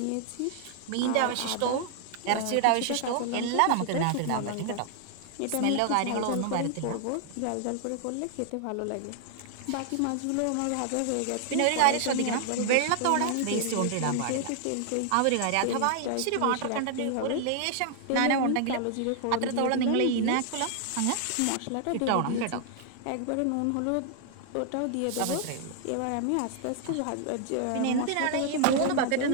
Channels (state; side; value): different; both; correlation 0.00